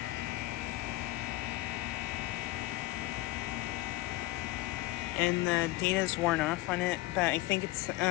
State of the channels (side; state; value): right; quieter; 18.6 dB